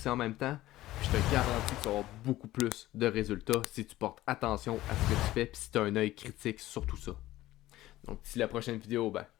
en même temps, puis je te garantis que tu vas avoir beaucoup plus de résultats si tu portes attention à ce que tu fais, puis si tu as un œil critique sur tout ça. Donc d'ici la prochaine vidéo, ben,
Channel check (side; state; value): right; quieter; 15.9 dB